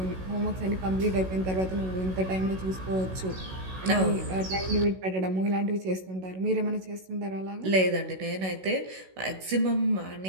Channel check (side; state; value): left; late; 16 ms